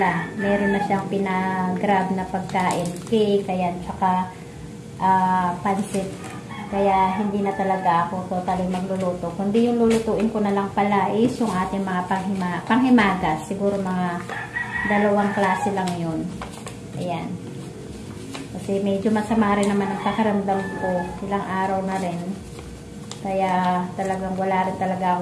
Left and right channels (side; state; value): both; identical; correlation 1.00